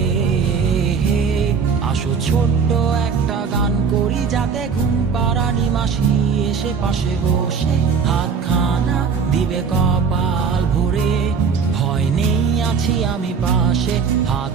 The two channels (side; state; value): left; quieter; 5.8 dB